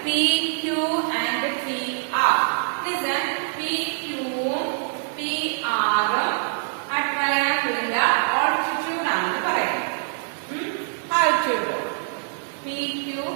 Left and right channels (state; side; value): silent; left; digital silence